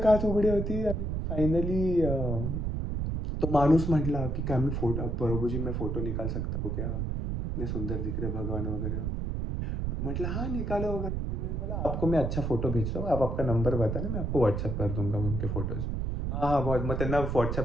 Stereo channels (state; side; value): noise; right; rumble, 1 dB below the sound